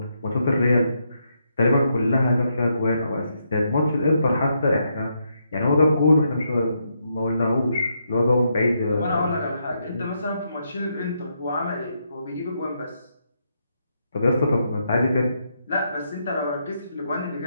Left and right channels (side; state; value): both; inverted; correlation -0.79